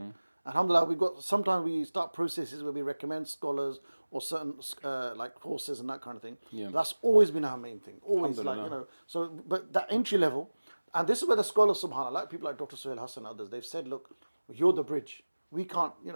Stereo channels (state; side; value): inverted; both; correlation -1.00